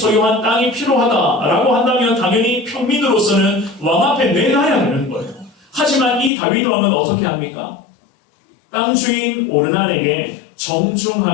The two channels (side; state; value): right; drops out; at 6.3 s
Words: 땅이 필요하다라고 한다면 당연히 평민으로서는 왕 앞에 내놔야 하는 거예요. 하지만 이 다윗 왕은 어떻게 합니까? 땅 주인 오르난에게